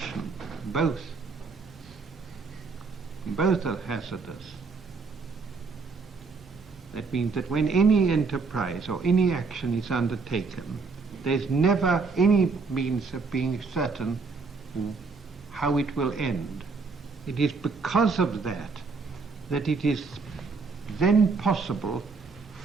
Both are hazardous. That means that when any enterprise or any action is undertaken, there's never any means of being certain how it will end. It is because of that it is then possible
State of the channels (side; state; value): left; quieter; 4.5 dB